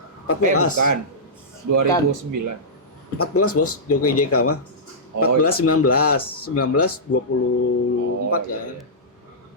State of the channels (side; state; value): both; normal; correlation -0.14